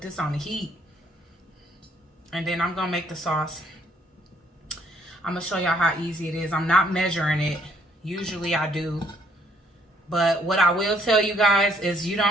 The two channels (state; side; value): normal; both; correlation 0.65